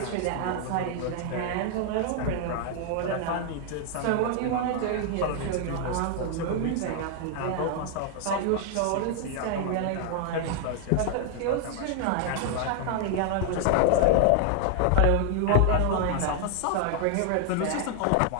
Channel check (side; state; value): both; different; correlation 0.00